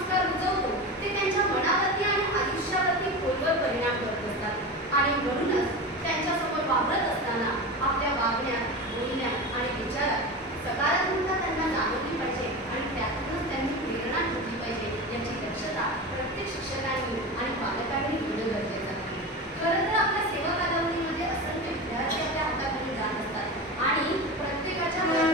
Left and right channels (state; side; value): normal; both; correlation 0.25